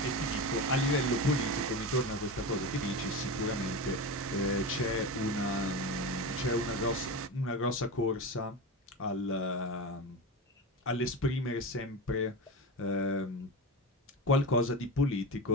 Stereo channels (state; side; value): normal; both; correlation 0.23